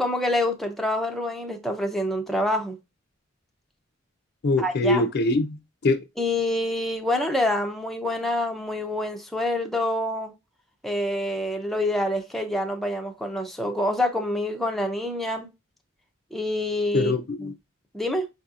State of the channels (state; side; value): normal; both; correlation 0.59